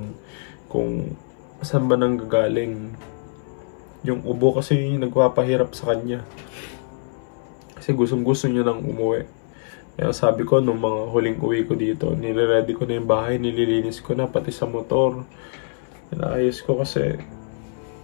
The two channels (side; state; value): right; silent; 61 dB below the other